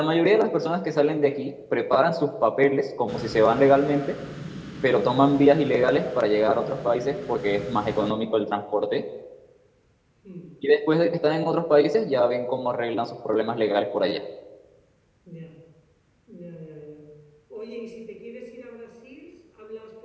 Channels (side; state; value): both; identical; correlation 1.00